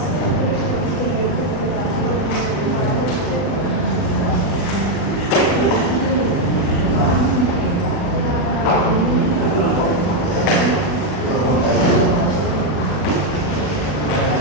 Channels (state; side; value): late; right; 40 ms